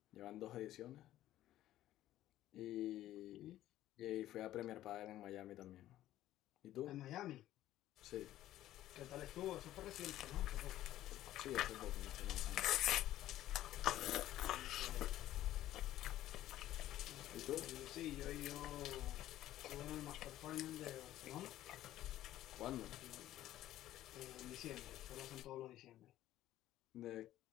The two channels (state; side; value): quieter; right; 13.8 dB